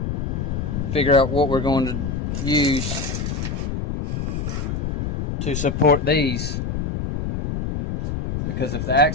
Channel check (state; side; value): noise; left; rumble, 2 dB below the sound